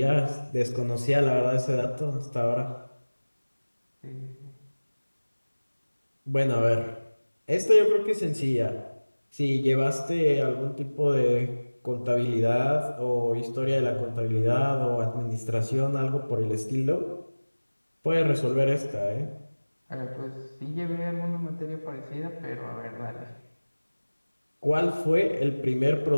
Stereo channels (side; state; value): both; inverted; correlation -1.00